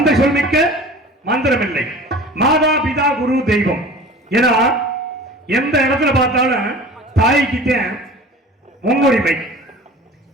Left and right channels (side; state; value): both; normal; correlation 0.41